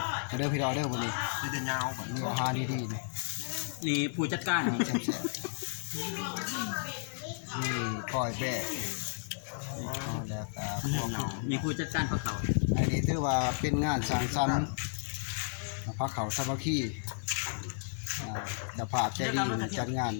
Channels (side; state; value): right; silent; 56 dB below the other